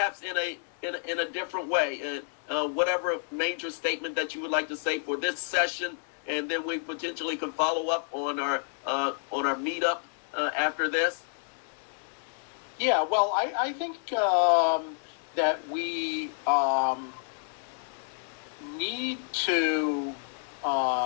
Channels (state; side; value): silent; right; digital silence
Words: in a different way. Whatever major statement that you would like to say for this session, and then we potentially can follow up on our meetup after this. Yeah, well, I think that we need to.